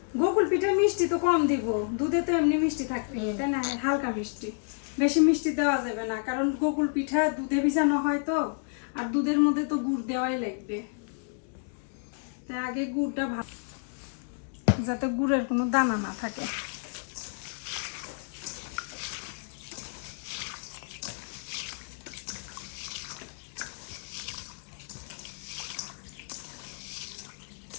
গোকুল পিঠে মিষ্টি তো কম দিব, দুধে তো এমনি মিষ্টি থাকবে, তাই না? হালকা মিষ্টি, বেশি মিষ্টি দেওয়া যাবে না, কারণ গোকুল পিঠা দুধে ভিজানো হয় তো, আর দুধের মধ্যে তো গুড় দেওয়াই লাগবে। তাই আগে গুড়টা যাতে গুড়ের কোনো দানা না থাকে।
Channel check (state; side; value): silent; right; 58 dB below the other